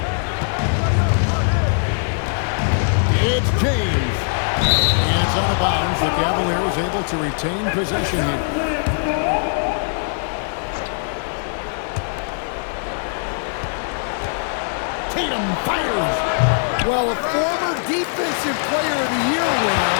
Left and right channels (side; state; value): right; silent; 65 dB below the other